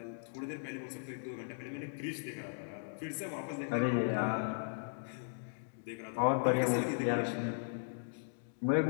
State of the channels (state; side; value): silent; right; digital silence